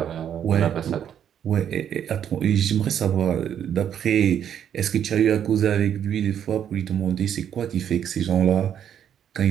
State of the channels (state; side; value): quieter; left; 9.3 dB